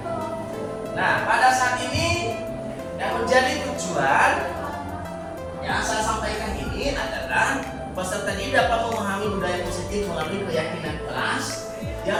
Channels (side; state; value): both; identical; correlation 1.00